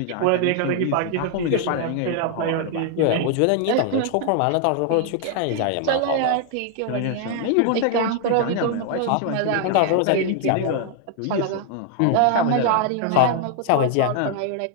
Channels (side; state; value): both; different; correlation 0.00